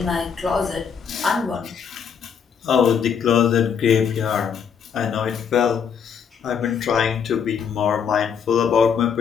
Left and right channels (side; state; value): right; quieter; 7.1 dB